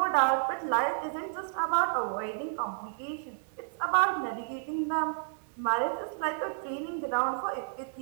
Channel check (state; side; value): silent; left; digital silence